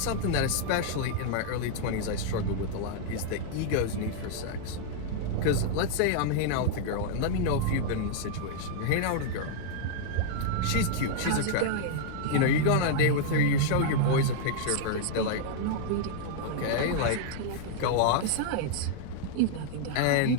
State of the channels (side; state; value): both; different; correlation -0.01